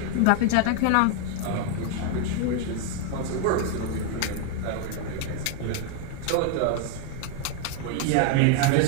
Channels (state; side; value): different; both; correlation 0.00